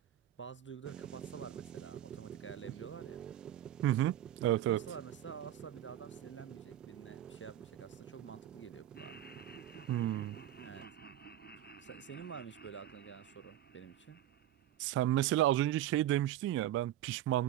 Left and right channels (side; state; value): left; quieter; 12.5 dB